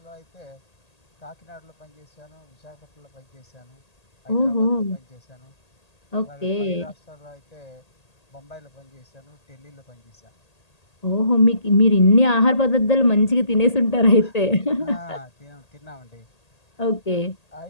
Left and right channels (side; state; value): right; late; 1.8 ms